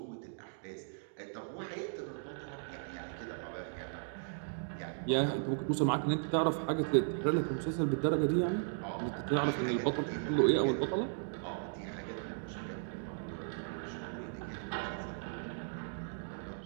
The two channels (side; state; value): left; silent; digital silence